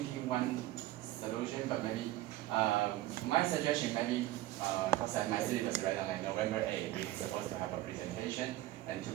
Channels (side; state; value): left; quieter; 16.0 dB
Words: one solution, but maybe my suggestion maybe because my syllabus right on like November 8th, we're supposed to have a presentation, and to